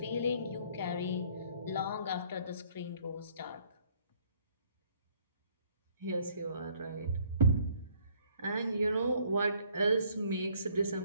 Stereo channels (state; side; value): inverted; both; correlation -0.61